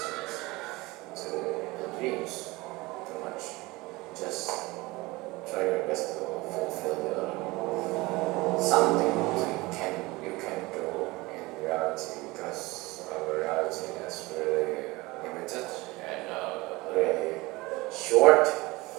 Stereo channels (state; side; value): quieter; left; 22.1 dB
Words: to the dreams too much. Just try your best to fulfill the something you can do in reality, because our reality is really limited and really short.